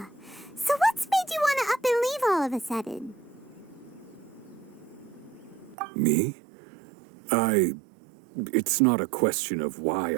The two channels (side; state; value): left; drops out; at 5.8 s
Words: So what's made you want to up and leave all of a sudden? Me? It's not a question of why